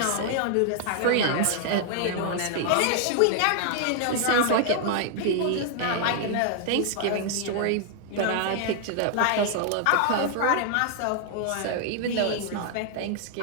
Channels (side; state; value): both; different; correlation 0.00